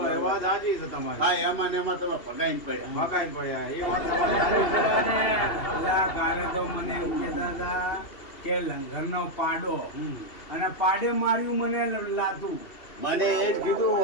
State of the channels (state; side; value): late; right; 2.8 ms